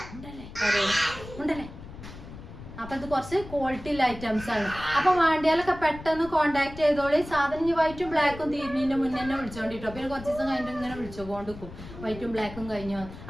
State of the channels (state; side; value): noise; left; rumble, 14 dB below the sound